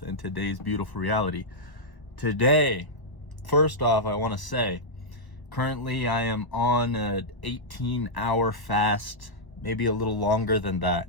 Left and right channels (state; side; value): late; right; 1.0 ms